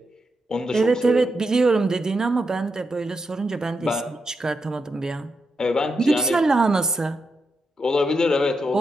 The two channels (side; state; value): both; normal; correlation 0.84